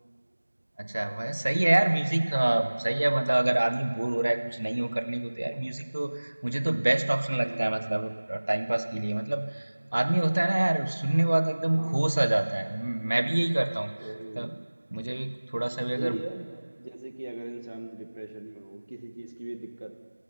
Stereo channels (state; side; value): inverted; both; correlation -1.00